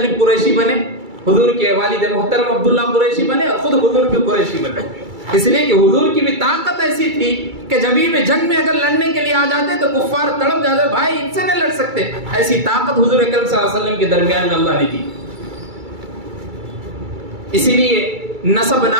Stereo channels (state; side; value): late; left; 2.3 ms